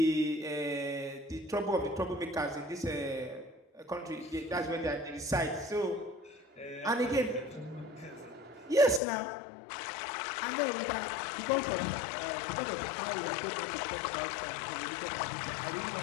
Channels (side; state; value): right; drops out; at 9.0 s